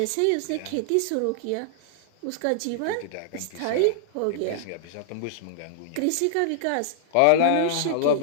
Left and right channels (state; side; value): different; both; correlation -0.01